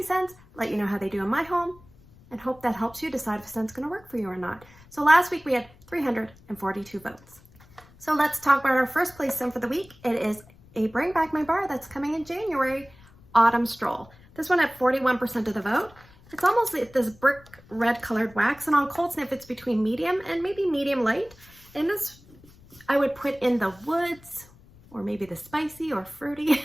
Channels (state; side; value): noise; left; rumble, 25 dB below the sound